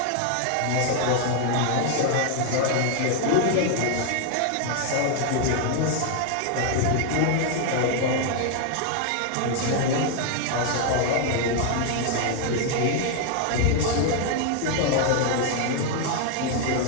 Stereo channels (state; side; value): different; both; correlation 0.00